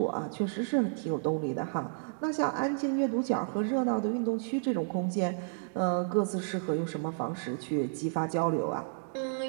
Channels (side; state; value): left; silent; digital silence